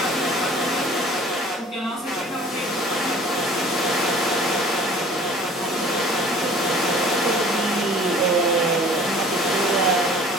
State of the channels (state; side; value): normal; both; correlation 0.49